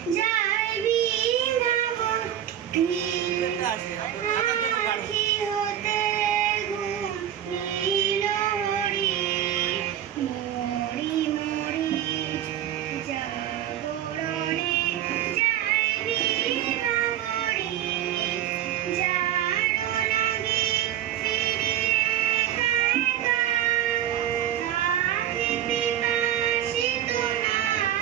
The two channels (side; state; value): left; quieter; 11.1 dB